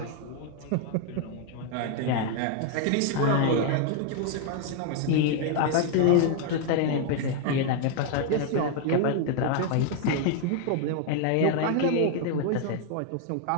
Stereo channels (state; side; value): different; both; correlation 0.00